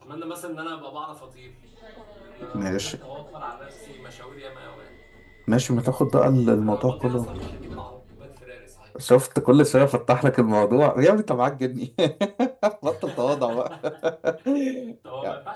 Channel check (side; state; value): both; identical; correlation 1.00